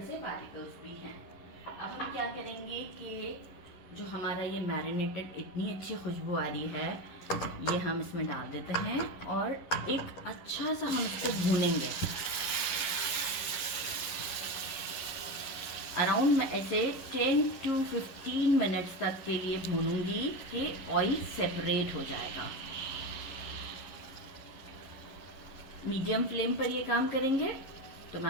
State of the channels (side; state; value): right; late; 11 ms